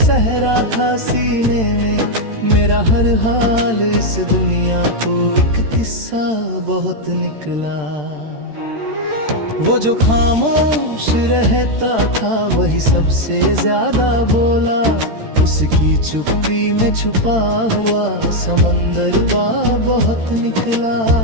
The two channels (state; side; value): late; left; 13 ms